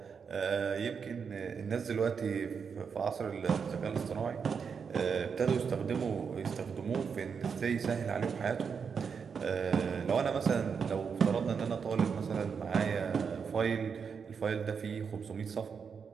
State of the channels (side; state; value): left; quieter; 6.2 dB